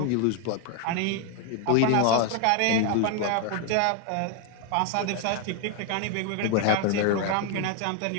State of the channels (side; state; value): both; different; correlation 0.01